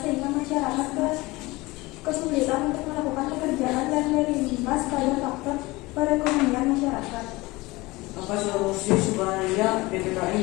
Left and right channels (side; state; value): right; quieter; 21.6 dB